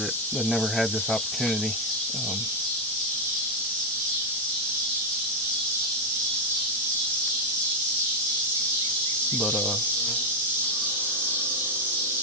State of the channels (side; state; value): both; normal; correlation 0.03